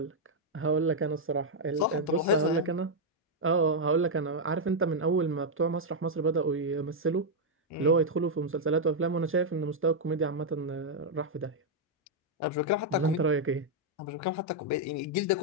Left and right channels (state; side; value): normal; both; correlation -0.02